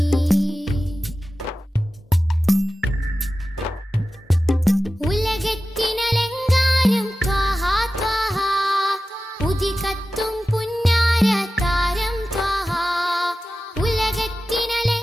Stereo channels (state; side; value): normal; both; correlation 0.94